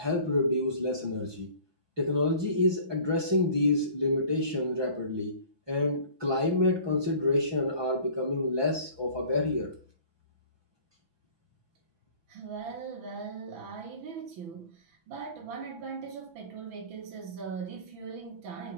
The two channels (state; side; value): late; left; 6.0 ms